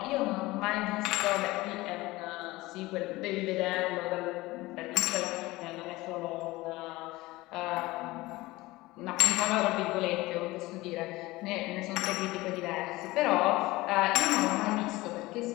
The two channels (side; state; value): right; quieter; 19.9 dB